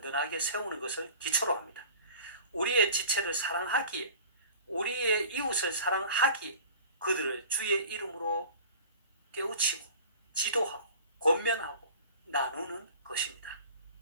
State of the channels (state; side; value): inverted; both; correlation -0.42